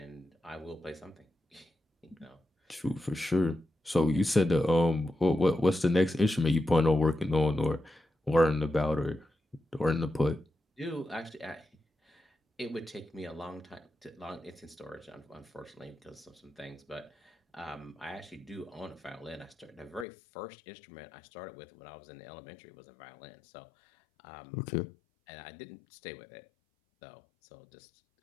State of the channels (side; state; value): right; drops out; at 20.1 s